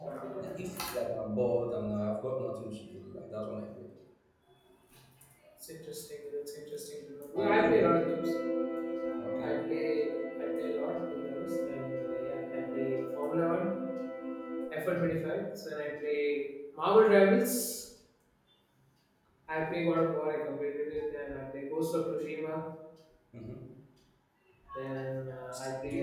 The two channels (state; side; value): identical; both; correlation 1.00